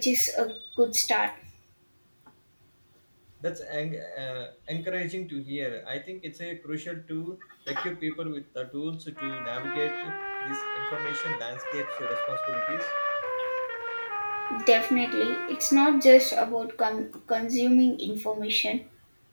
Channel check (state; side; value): inverted; both; correlation -1.00